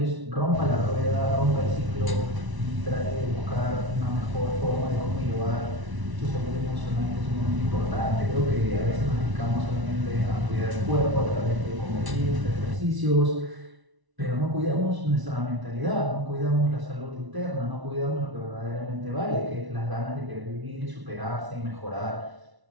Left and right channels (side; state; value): left; late; 1.0 ms